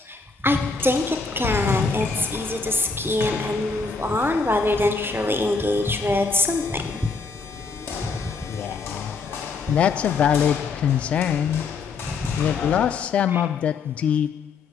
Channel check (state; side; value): quieter; right; 4.5 dB